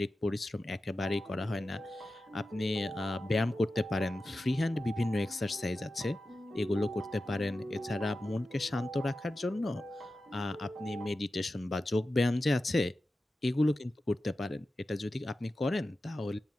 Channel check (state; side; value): normal; both; correlation 0.93